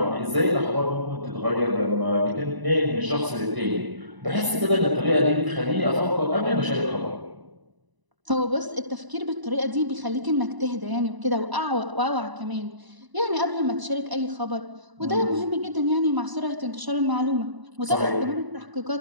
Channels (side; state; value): left; late; 1.0 ms